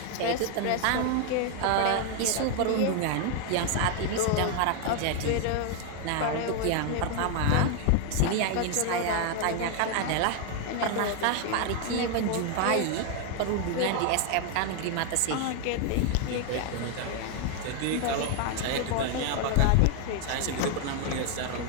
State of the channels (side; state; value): both; different; correlation 0.01